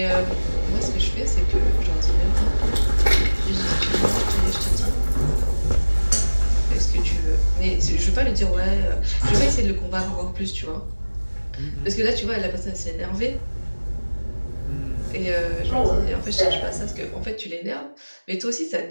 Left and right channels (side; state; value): both; inverted; correlation -1.00